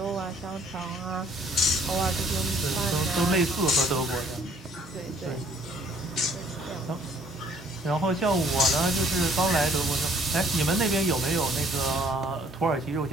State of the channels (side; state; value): both; normal; correlation 0.60